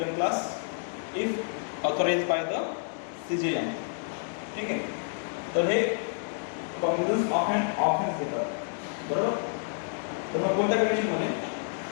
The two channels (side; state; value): right; silent; 58 dB below the other